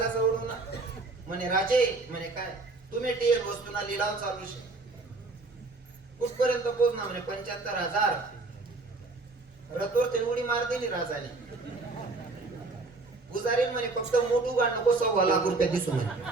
जवळून ना म्हणे, राजे म्हणे काय तुम्ही टीएल वस्तूना लिलाव चालू शे, कुठपर्यंत पोहोचणार म्हणे 75,000. रथवर ते उडी मारते नि राजाने. पुजारी म्हणे, फक्त मोठू गाड नको 1.25 रुपये दिसू म्हणे.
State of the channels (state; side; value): quieter; left; 3.5 dB